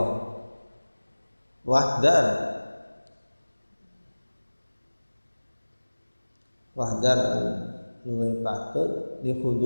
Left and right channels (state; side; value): inverted; both; correlation -1.00